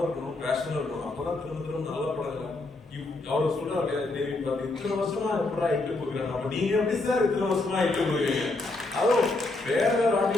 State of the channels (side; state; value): right; quieter; 3.1 dB